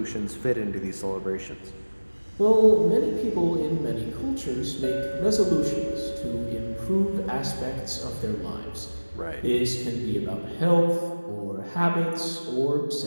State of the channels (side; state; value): both; inverted; correlation -1.00